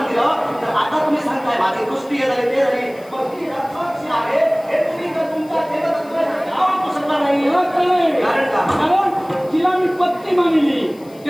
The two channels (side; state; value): left; noise; hiss, 26 dB below the sound